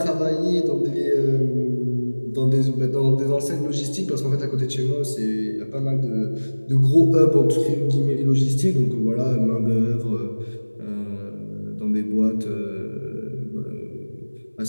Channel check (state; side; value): inverted; both; correlation -1.00